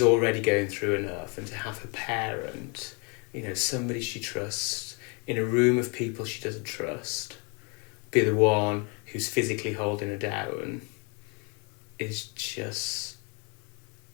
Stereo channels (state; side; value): quieter; right; 34.0 dB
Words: already going through enough, and to have her parent, you know, somebody she trusts, in a room of people she doesn't trust, be the one who's physically holding her down, is just,